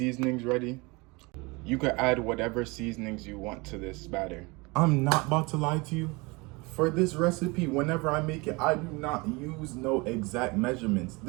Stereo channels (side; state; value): left; quieter; 26.1 dB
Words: ready. You could add whatever seasonings you want to this batter. I'm not about to lie to you. For this recipe, whenever I make it, I do not use no exact measurements.